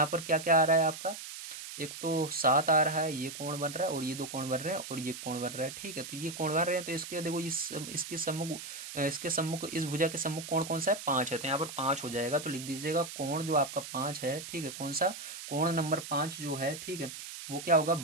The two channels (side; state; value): right; noise; hiss, 10 dB below the sound